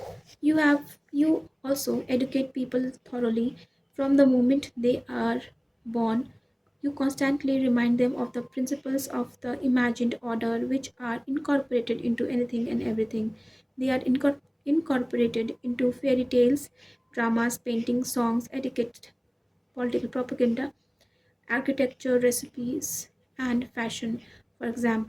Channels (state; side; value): identical; both; correlation 1.00